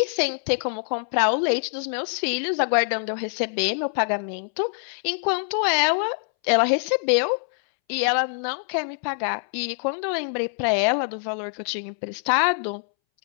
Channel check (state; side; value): silent; right; 62 dB below the other